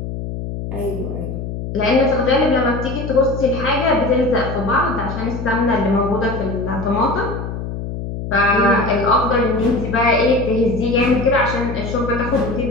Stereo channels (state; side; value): noise; left; hum, 6 dB below the sound